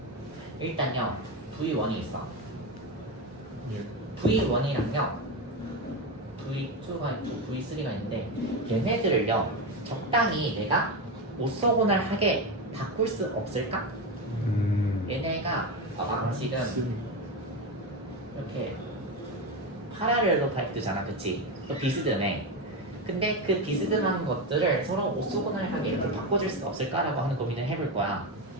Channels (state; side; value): normal; both; correlation 0.15